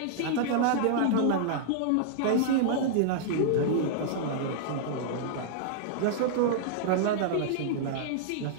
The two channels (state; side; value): different; both; correlation -0.01